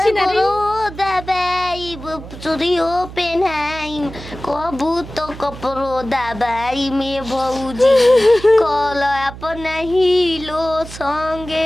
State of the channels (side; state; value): right; noise; hum, 14 dB below the sound